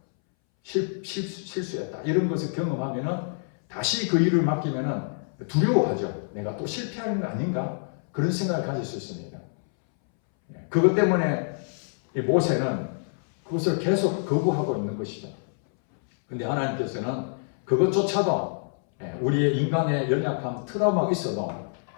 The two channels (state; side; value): silent; right; 61 dB below the other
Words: 실수했다. 이런 것을 경험하면은 다시 그 일을 맡기면은 두려워하죠. 내가 또 실패하는 거 아닌가? 그런 생각을 가질 수 있습니다. 그것 때문에 모세는 그것을 계속 거부하고 있는 것이죠. 근데 하나님께서는 그것조차도 우리의 인간의 연약한 트라우마가 있어도